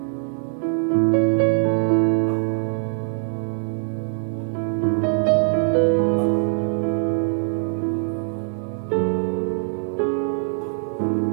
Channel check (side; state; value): left; silent; 59 dB below the other